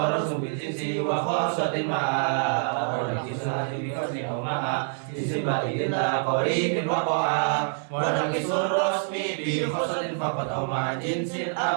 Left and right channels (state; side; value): silent; left; digital silence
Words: بالجنس وخاصة معا ونقص الحد بفصل أو معا اسم بعيد لا قريب وقاء ونقص الرسم بخاصة فقط أو مع جنس